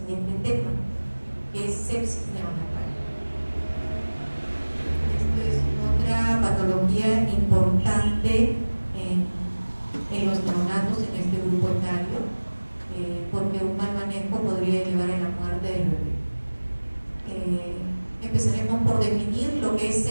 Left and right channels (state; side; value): inverted; both; correlation -1.00